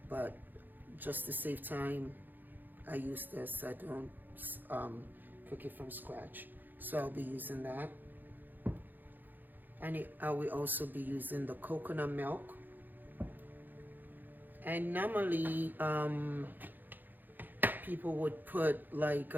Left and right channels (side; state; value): left; late; 0.088 ms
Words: but just to save time, I use this. I don't cook it from scratch. So I'll be using that. And I will also be using the coconut milk. And normally, people would put like